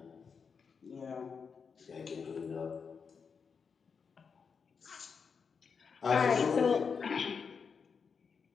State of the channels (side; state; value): right; quieter; 5.9 dB